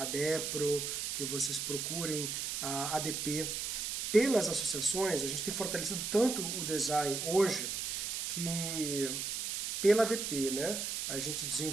DEPRO, que vocês procurem a ADP. Pelas associações, a gente tem fortalecido tanto o design hoje, que pela ADP, né, a gente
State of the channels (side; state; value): right; noise; hiss, 2 dB below the sound